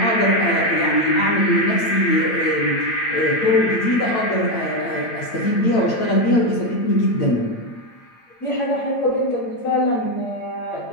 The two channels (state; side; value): late; right; 8.9 ms